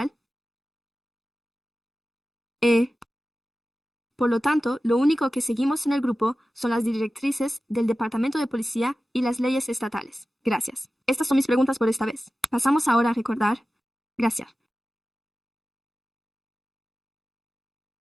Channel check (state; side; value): normal; both; correlation 0.95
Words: Por lo tanto, lo único que seguimos en el grupo son las directrices del Departamento de Policía y las leyes estatales. Gracias. Estas son mis preguntas por esta vez. Pasamos ahora a recordar. Gracias.